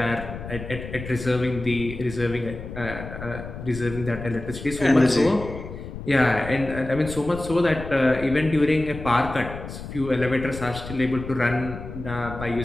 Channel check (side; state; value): left; noise; rumble, 10 dB below the sound